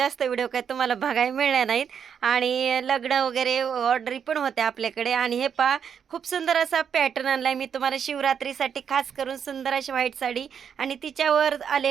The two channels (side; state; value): left; quieter; 7.6 dB